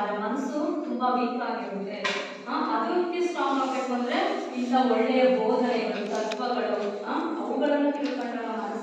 ಮನಸ್ಸು ತುಂಬಾ ವೀಕ್ ಆಗಿರುತ್ತೆ. ಅದಕ್ಕೆ ಸ್ಟ್ರಾಂಗ್ ಆಗಬೇಕು ಅಂದ್ರೆ ಇಂಥ ಒಳ್ಳೆಯ ಬೋಧನೆಗಳು, ತತ್ವಗಳು ಅವುಗಳನ್ನು ತಿಳ್ಕೊಂಡ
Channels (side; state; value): both; identical; correlation 1.00